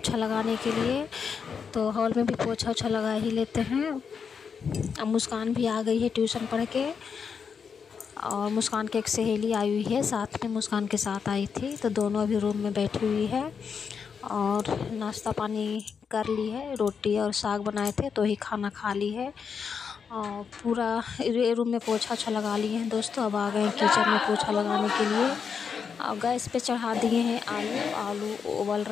लगाने के लिए। तो हॉल में भी पोछा ओछा लगा ही लेते हैं। अब मुस्कान भी आ गई है ट्यूशन पढ़ के, और मुस्कान की एक सहेली आई हुई है साथ में, मुस्कान के साथ आई थी। तो दोनों अभी रूम में बैठी हुई है और नाश्ता पानी कर ली है। रोटी और साग बनाए थे तो ही खाना खा ली है। और पूरा रूम में पोछा ओछा लगा लिए हैं दोस्तों। अब आ गए किचन में पोछा लगाने के लिए। और गैस पे चढ़ा दिए हैं आलू उबल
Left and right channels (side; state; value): right; quieter; 6.3 dB